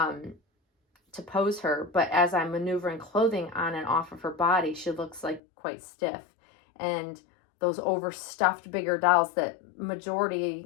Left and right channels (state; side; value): drops out; right; at 5.4 s